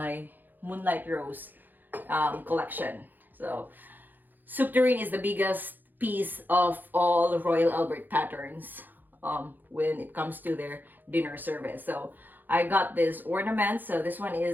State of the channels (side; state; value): left; late; 0.088 ms